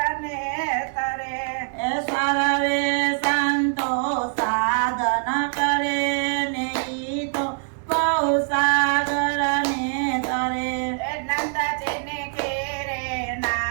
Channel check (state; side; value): silent; left; 62 dB below the other